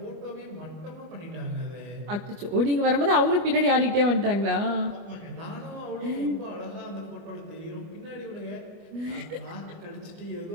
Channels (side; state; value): left; late; 25 ms